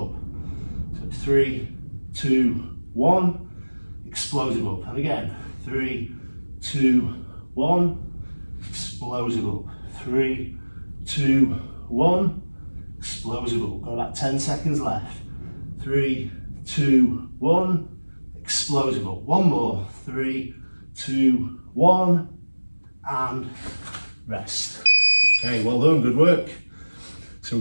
So 3, 2, 1. Explosive up. And again. 3, 2, 1. Explosive up. 3, 2, 1. Explosive up. Got about 10 seconds left. 3, 2, 1. Explosive up. One more. 3, 2, 1. And rest. Okay, well done. Good work. So we're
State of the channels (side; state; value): both; inverted; correlation -1.00